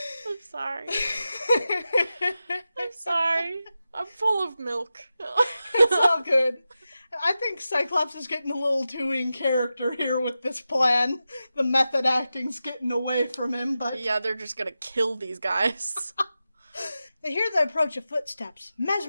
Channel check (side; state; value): both; inverted; correlation -0.92